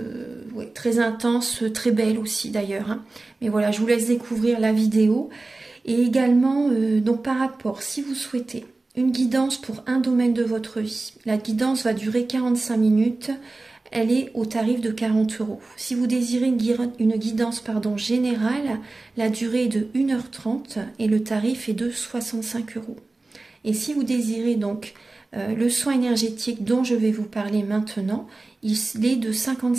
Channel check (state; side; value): quieter; left; 3.3 dB